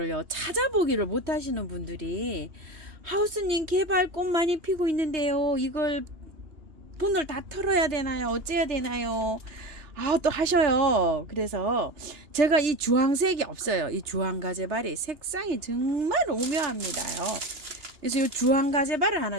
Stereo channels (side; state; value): left; late; 2.9 ms